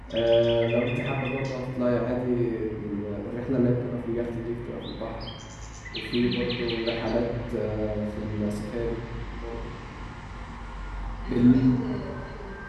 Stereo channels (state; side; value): identical; both; correlation 1.00